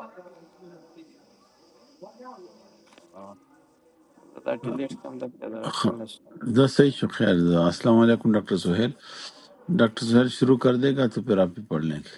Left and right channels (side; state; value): both; identical; correlation 1.00